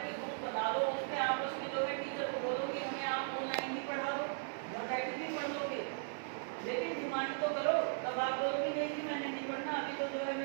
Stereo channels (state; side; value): silent; left; digital silence